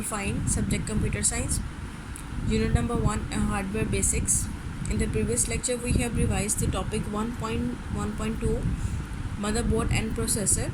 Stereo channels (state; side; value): identical; both; correlation 1.00